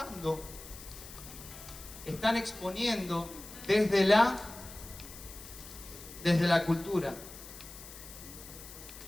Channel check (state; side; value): noise; left; hiss, 15 dB below the sound